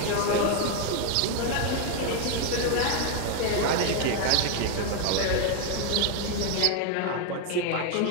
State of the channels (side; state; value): both; different; correlation 0.01